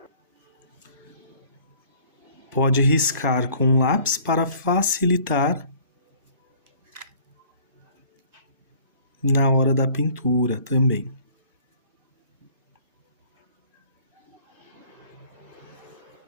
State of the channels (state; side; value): inverted; both; correlation -0.53